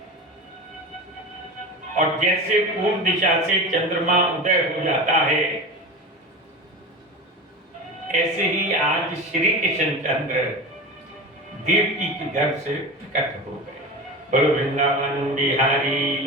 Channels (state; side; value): normal; both; correlation 0.28